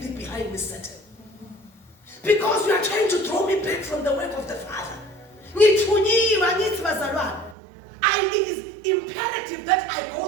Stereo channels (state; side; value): drops out; left; at 7.6 s